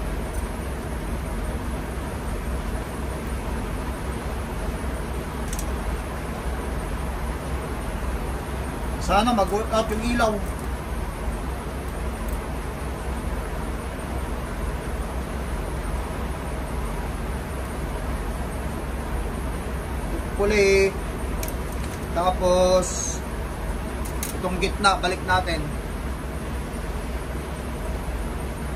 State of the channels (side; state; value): both; identical; correlation 1.00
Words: Sana mag-work out yung ilaw. hopefully. Tapos itong gitna balik natin.